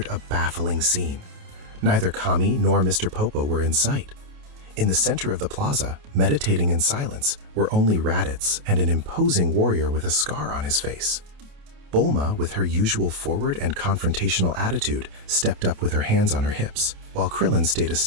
a baffling scene. Neither Kami nor Mr. Popo were in sight. In the center of the plaza, meditating in silence, were only Raditz and an imposing warrior with a scar on his face. Bulma, with her usual forward and confrontational attitude, stepped up with her hands on her hips, while Krillin stayed a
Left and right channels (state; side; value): late; left; 28 ms